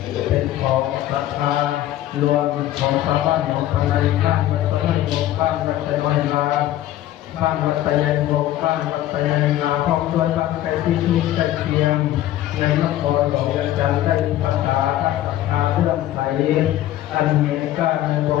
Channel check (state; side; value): quieter; right; 13.6 dB